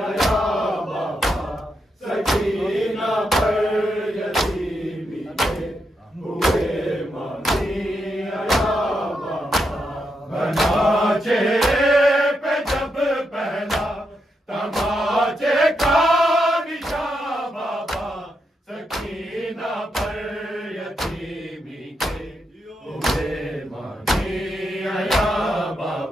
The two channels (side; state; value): both; normal; correlation 0.83